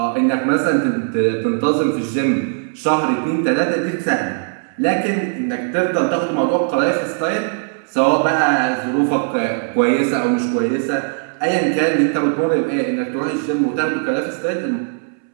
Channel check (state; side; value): silent; left; 67 dB below the other